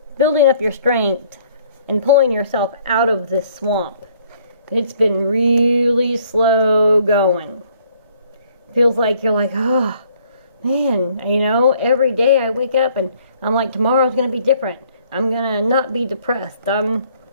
building up your strength and pulling yourself out of this swamp. It's been really slow going. Feels like you're like, oh, man, you know, every day I wake up and I'm like, tomorrow's going to be different. I'm going to not be depressed. I'm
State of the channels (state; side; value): inverted; both; correlation -0.62